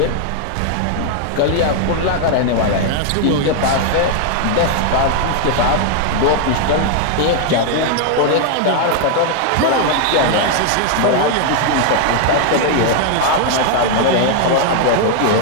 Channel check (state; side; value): different; both; correlation 0.00